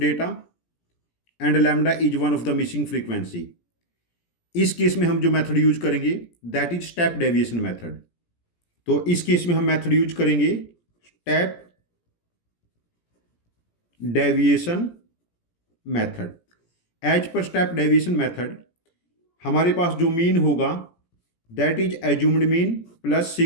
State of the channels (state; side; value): late; right; 17 ms